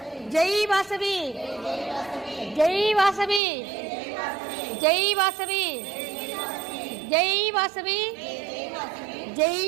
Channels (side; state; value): left; drops out; at 3.4 s